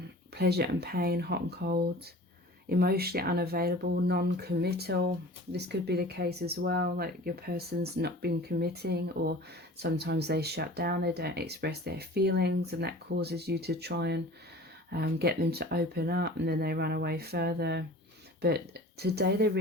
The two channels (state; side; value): normal; both; correlation 0.42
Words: pleasure and pain, hot and cold, emotionally unavailable, non-committal. This could be the case as well, like your person's not been committing, or sometimes they shut down, they don't express their feelings, and that causes you to try and get them to open up, and then they run away further. But today they're